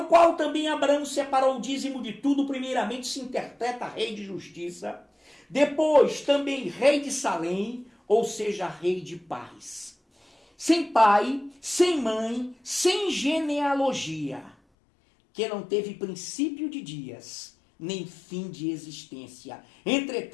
qual também Abraão separou o dízimo de tudo, primeiramente se interpreta rei de justiça, depois também rei de Salém, ou seja, rei de paz. Sem pai, sem mãe, sem genealogia, que não teve princípio de dias, nem fim de existência.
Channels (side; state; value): right; drops out; at 14.6 s